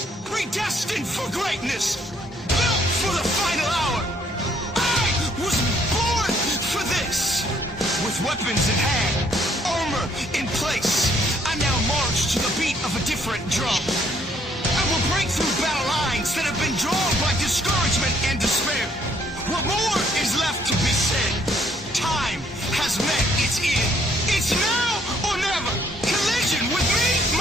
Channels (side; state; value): both; normal; correlation 0.66